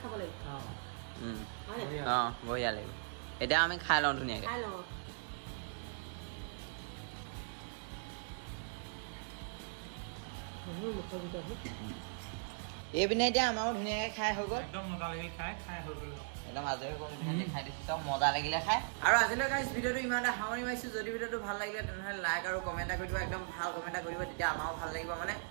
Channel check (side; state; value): left; silent; digital silence